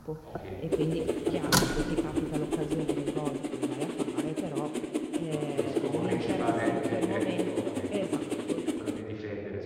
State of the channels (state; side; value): identical; both; correlation 1.00